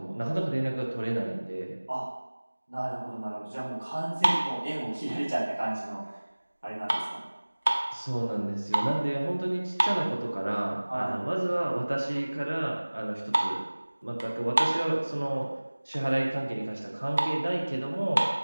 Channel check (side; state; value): both; inverted; correlation -1.00